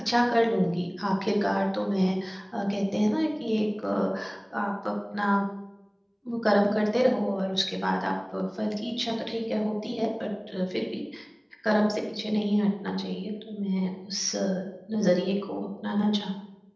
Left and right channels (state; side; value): identical; both; correlation 1.00